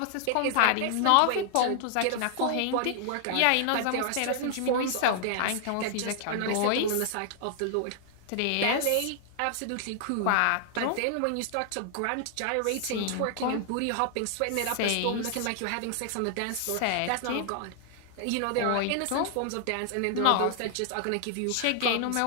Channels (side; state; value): both; different; correlation 0.00